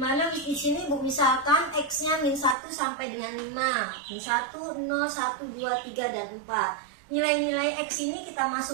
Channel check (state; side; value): drops out; left; at 2.6 s